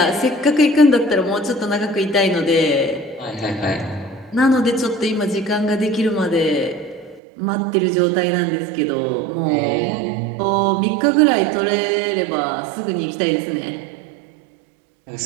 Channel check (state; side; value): drops out; left; at 7.2 s